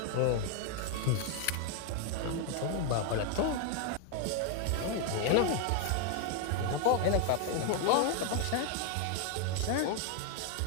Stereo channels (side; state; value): both; different; correlation 0.00